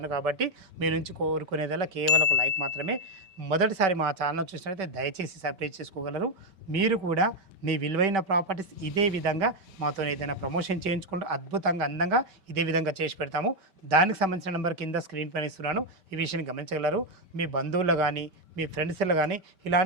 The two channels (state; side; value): late; left; 5.2 ms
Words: కాబట్టి మీ నుంచి కోరుకునేదల్లా కేవలం ఒక లైక్ మాత్రమే. మొదటిసారి మా ఛానల్ చూసినట్లయితే దయచేసి సబ్స్క్రైబ్ చేసుకోగలరు. మీరు కూడా మీ విలువైన ప్రాపర్టీస్ ఇదే విధంగా మాతో ఏదైనా ప్రమోషన్ చేయించుకుంటూ అద్భుతంగా అందంగా ఇదే విధంగా చేసి పెడతాము. దానికి సంబంధించిన నెంబర్ కింద స్క్రీన్ పైన ఇస్తున్నాను, ఈ విషయాన్ని గమనించగలరు. మీ బంధువులు కానీ మీ ఫ్రెండ్స్లో కానీ